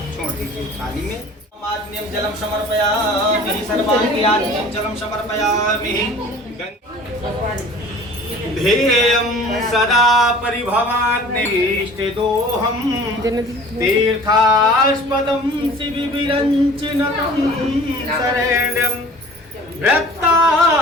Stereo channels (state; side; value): normal; both; correlation 0.46